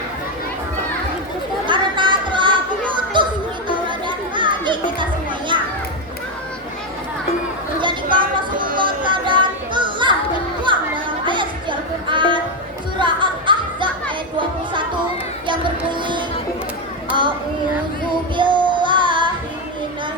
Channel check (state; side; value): normal; both; correlation 0.07